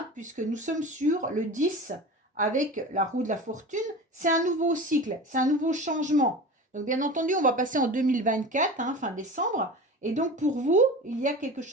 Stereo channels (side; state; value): both; normal; correlation 0.33